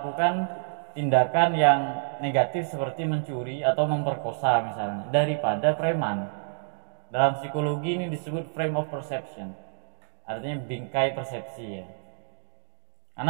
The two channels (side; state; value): left; silent; digital silence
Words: tindakan yang negatif seperti mencuri atau memperkosa misalnya, daripada preman. Dalam psikologi ini disebut frame of perception, artinya bingkai persepsi ya.